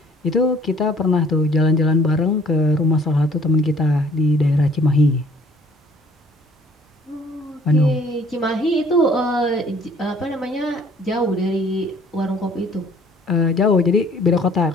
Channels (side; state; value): both; normal; correlation 0.57